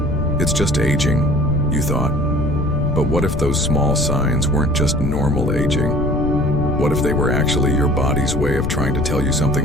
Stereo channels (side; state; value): left; noise; rumble, 2 dB below the sound